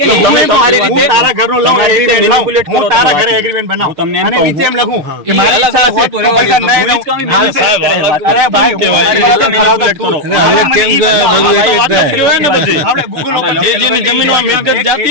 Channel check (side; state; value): left; late; 6.5 ms